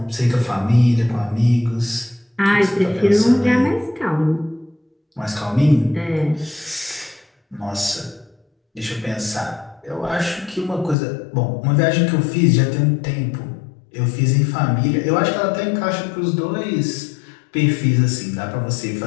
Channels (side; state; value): right; drops out; at 11.0 s